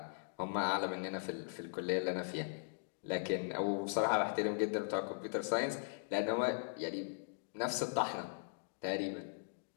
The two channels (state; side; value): silent; right; digital silence